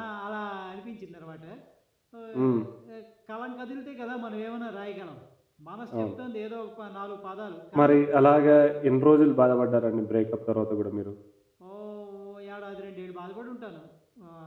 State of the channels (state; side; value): identical; both; correlation 1.00